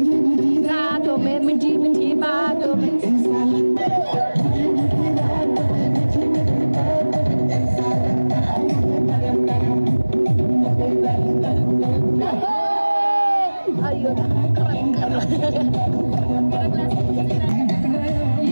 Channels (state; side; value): inverted; both; correlation -1.00